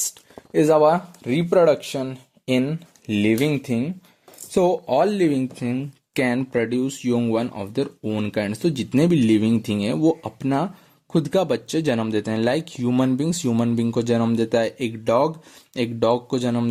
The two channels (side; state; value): both; identical; correlation 1.00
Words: is our reproduction in living thing. So all living thing can produce young one of their own kind. तो जितने भी लिविंग थिंग है वो अपना खुद का बच्चे जन्म देते हैं। Like human beings, human being को जन्म देता है, एक डॉग को जन्म